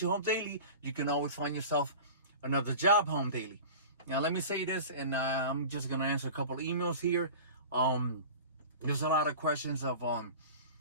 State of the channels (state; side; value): inverted; both; correlation -0.35